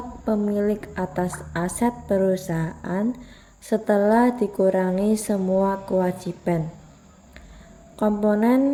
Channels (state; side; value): identical; both; correlation 1.00